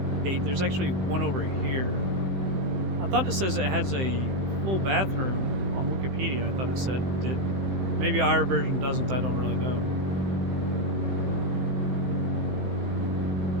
8. There's actually one over here. I thought it says it has a full bathroom on Wikipedia. I thought it said it did. Maybe our version doesn't. I don't really know.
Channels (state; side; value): late; left; 15 ms